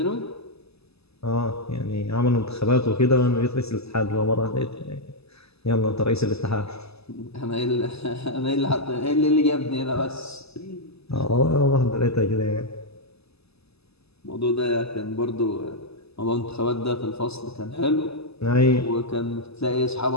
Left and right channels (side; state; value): right; late; 0.79 ms